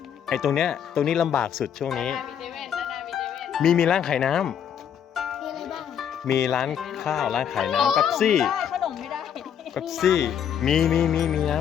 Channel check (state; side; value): quieter; right; 8.7 dB